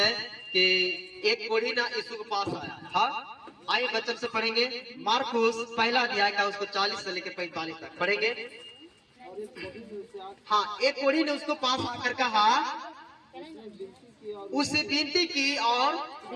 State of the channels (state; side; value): identical; both; correlation 1.00